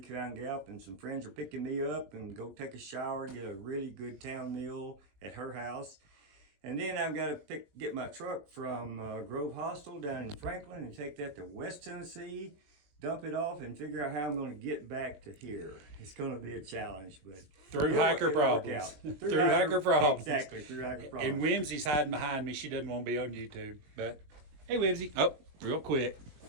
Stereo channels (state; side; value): late; left; 20 ms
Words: Gap, and some friends are picking me up and go take a shower, get a really good town meal at her house. And then I've got to get my truck from Grove Hostel down in Franklin and take that to West Tennessee, dump it off, and figure out how I'm going to get back to here. It's going to be a challenge, but through hiker problems. Through hiker problems. Exactly, through hiker problems. And Whimsy's hiding behind me. She doesn't want to be on YouTube. But hey, Whimsy. Oh, real quick.